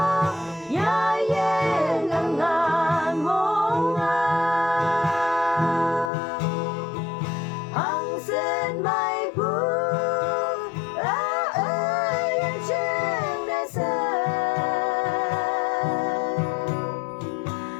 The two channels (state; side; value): drops out; right; at 6.1 s